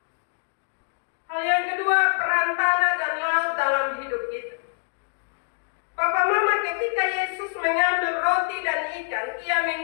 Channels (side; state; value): right; silent; digital silence